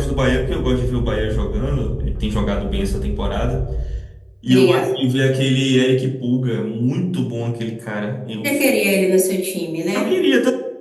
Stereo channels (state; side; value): identical; both; correlation 1.00